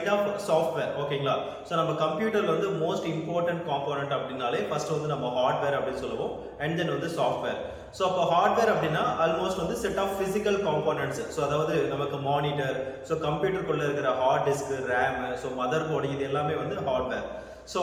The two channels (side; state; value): both; identical; correlation 1.00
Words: of software. ஓகேங்களா? So நம்ம கம்ப்யூட்டர்ல வந்து most important component அப்படினாலே first வந்து நம்ம hardware அப்படி சொல்லுவோம் and then வந்து software. So அப்ப hardware அப்படினா almost வந்து set of physical components. So அதாவது நமக்கு monitor, so கம்ப்யூட்டர் குள்ள இருக்கிற hard disk, RAM, so motherboard இது எல்லாமே வந்து hardware. So